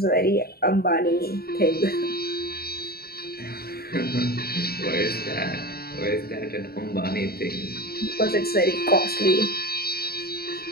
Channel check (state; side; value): late; right; 0.45 ms